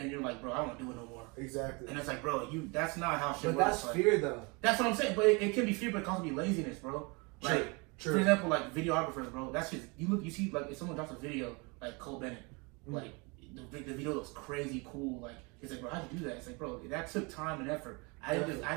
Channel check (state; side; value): quieter; left; 29.3 dB